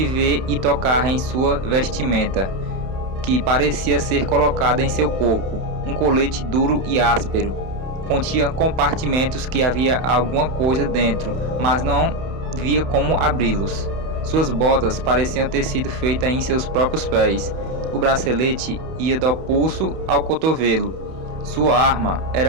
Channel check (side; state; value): left; late; 31 ms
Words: ver e tocar em sua vestimenta, que parecia ser colocada em seu corpo, um colete duro e áspero. Continha compartimentos que havia alguma coisa dentro, mas não via como abri-los. Suas botas pareciam ter sido feitas em seus próprios pés. O bracelete ia do pulso ao cotovelo. Sua arma